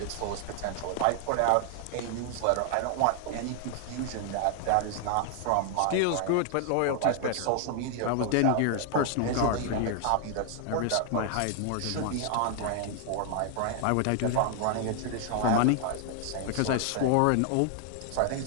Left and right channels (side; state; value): both; different; correlation 0.00